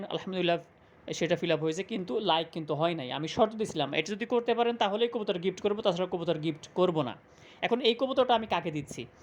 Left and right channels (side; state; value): both; identical; correlation 1.00